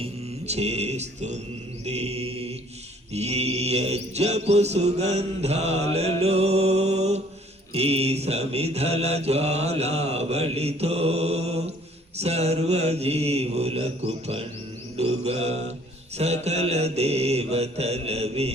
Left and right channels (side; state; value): both; normal; correlation 0.58